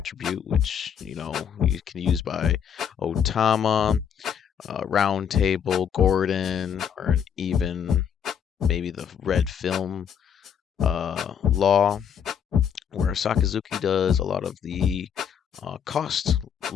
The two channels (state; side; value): quieter; right; 8.1 dB